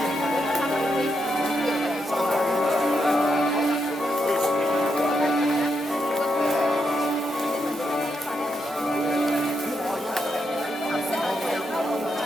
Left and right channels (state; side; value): normal; both; correlation 0.81